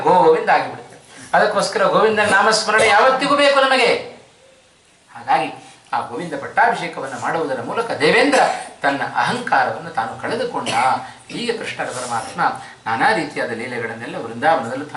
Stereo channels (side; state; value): both; identical; correlation 1.00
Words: ಗೋವಿಂದ ಆಗಿಬಿಡ್ತೇವೆ. ಅದಕ್ಕೋಸ್ಕರ ಗೋವಿಂದನ ನಾಮಸ್ಮರಣೆ ಯಾವತ್ತಿಗೂ ಬೇಕು ನಮಗೆ. ಹಾಗಾಗಿ ಆ ಗೋವಿಂದ ಪಟ್ಟಾಭಿಷೇಕವನ್ನು ಮಾಡುವುದರ ಮೂಲಕ ದೇವೇಂದ್ರ ತನ್ನ ಅಹಂಕಾರವನ್ನು ತಾನು ಕಳೆದುಕೊಂಡ. ಹೀಗೆ ಕೃಷ್ಣರ ಪರಮಾತ್ಮ ನಾನಾ ರೀತಿಯಾದ ಲೀಲೆಗಳನ್ನೆಲ್ಲ ವೃಂದಾವನದಲ್ಲೂ